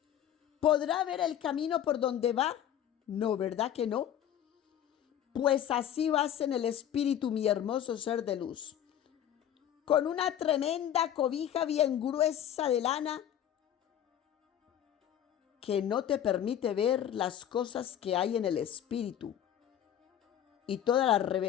¿Podrá ver el camino por donde va? No, ¿verdad que no? Pues así vas en el espíritu, mi hermoso ser de luz, con una tremenda cobija bien gruesa de lana que no te permite ver las cosas que hay en el espíritu y todas las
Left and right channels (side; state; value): right; quieter; 10.3 dB